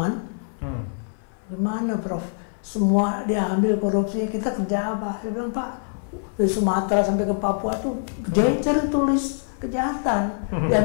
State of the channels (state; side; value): silent; right; 56 dB below the other